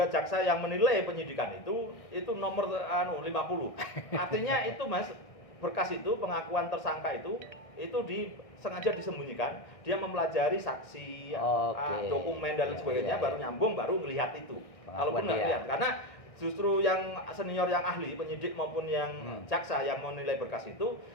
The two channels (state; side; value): late; right; 1.6 ms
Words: jaksa yang menilai penyidikan itu nomor 50. Artinya itu Mas, berkas itu pengakuan tersangka itu sengaja disembunyikan, dia mempelajari saksi, Oke. dokumen dan lain Ya, sebagainya, ya, baru ya. nyambung, baru melihat itu. Pengakuan Kalaupun nggak dia. lihat, karena justru yang senior, yang ahli, penyidik maupun yang jaksa yang menilai berkas itu,